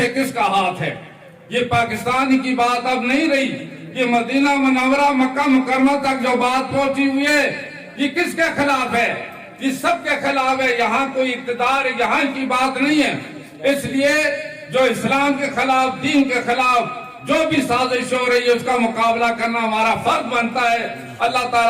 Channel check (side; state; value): both; identical; correlation 1.00